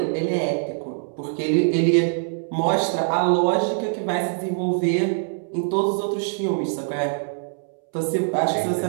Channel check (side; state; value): left; silent; 63 dB below the other